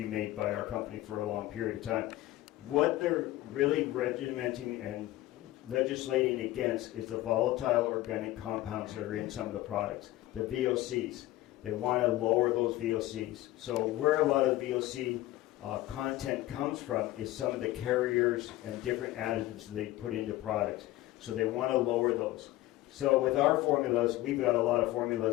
made by our company for a long period of time. What they're really regimenting and legislating against is the volatile organic compounds that are in some of the products, the VOCs. They want to lower those VOCs. So where a lot of the VOC content comes from is some of the carriers and different additives they put into products. So they want to lower those. So with our formulas, we've got a lot of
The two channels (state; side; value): quieter; right; 16.5 dB